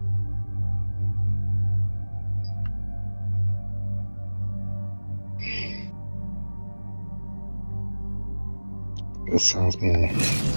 That sounds more.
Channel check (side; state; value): both; inverted; correlation -1.00